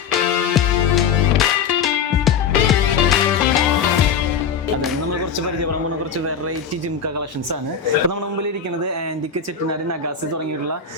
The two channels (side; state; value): right; quieter; 6.7 dB